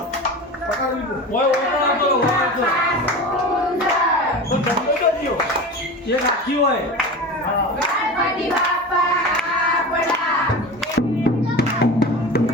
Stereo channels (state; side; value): normal; both; correlation 0.30